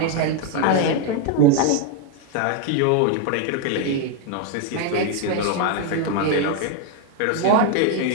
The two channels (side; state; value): both; different; correlation 0.01